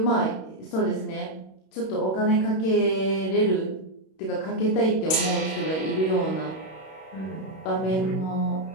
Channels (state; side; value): late; right; 32 ms